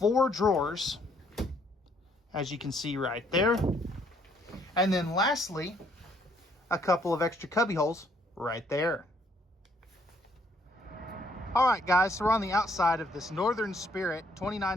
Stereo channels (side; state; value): both; normal; correlation 0.67